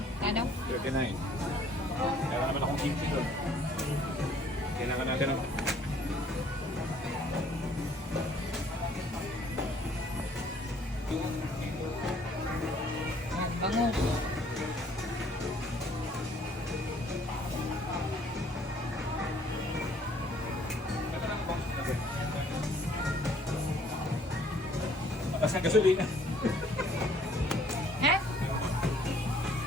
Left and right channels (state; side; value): normal; both; correlation 0.60